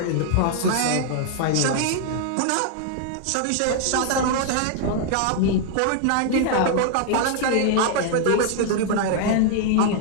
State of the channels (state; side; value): different; both; correlation 0.00